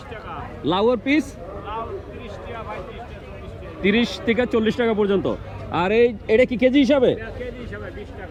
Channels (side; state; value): both; identical; correlation 1.00